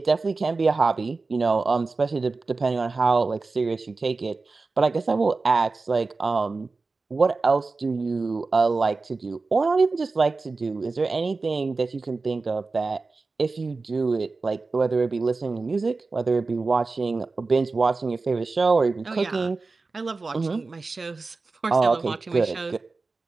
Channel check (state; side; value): quieter; left; 3.8 dB